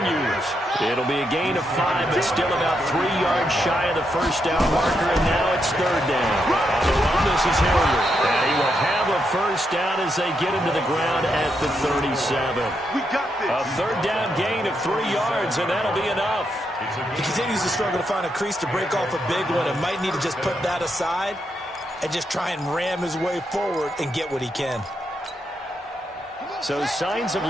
It'll be a gain of 5, but still about 3 yards shy of the first down marker, and now it's third down. On the run, this is Hilliard. And he will have a first down as they get him to the ground at the 37. We got this. A third down gain of 3 yards, and that'll be enough. He continues to struggle to find a crease to break off a big one and might need to just put that aside and just try and ram his way forward and get what he can. So signs of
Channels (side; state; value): both; normal; correlation 0.81